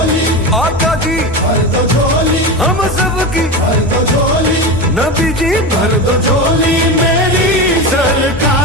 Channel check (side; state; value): both; normal; correlation 0.22